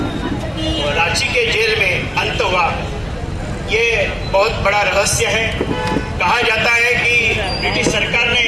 रांची के जेल में अंत हुआ। ये बहुत बड़ा रहस्य है। कहा जाता है कि ब्रिटिश सरकार ने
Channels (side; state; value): both; identical; correlation 1.00